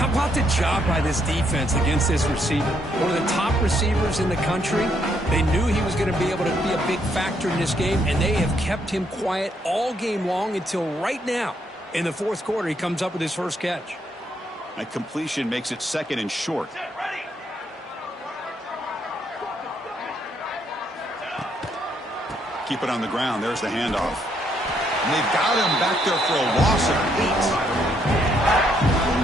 about the job by this defense against this receiver? One of the top receivers in the country. They knew he was going to be able to be a big factor in this game, and they have kept him quiet all game long until right now. In the fourth quarter, he comes up with his first catch. A completion makes it 2nd and short. Keep it on the ground. There's the handoff. And they've got him back there for a loss of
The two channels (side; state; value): both; normal; correlation 0.73